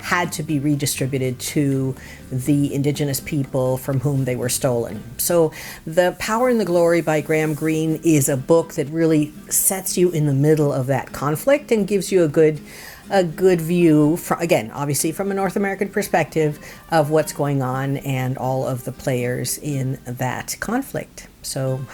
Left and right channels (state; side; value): identical; both; correlation 1.00